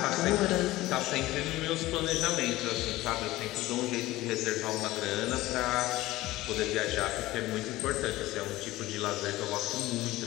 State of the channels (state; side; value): quieter; right; 17.6 dB